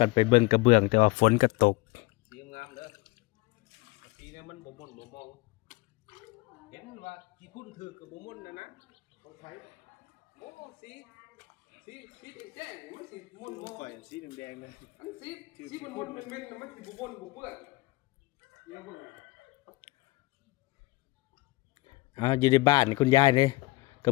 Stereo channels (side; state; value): right; quieter; 22.0 dB